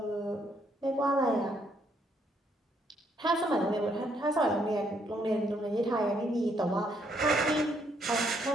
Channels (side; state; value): both; normal; correlation 0.71